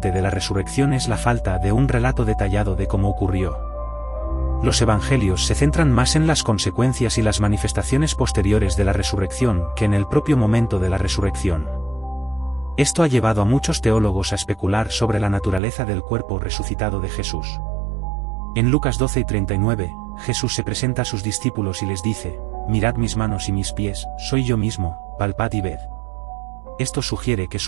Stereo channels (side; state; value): left; drops out; at 15.6 s